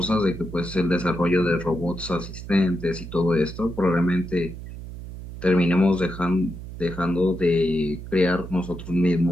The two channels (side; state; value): right; noise; hum, 11 dB below the sound